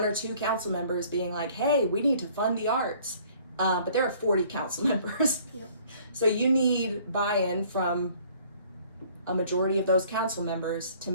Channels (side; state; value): both; inverted; correlation -0.56